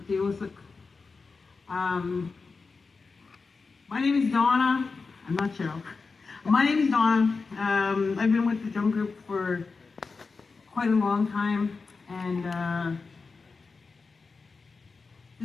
My name is Donna. I'm not Cheryl. My name is Donna. I've been with the drum group for quite a long time, and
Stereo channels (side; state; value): right; quieter; 4.4 dB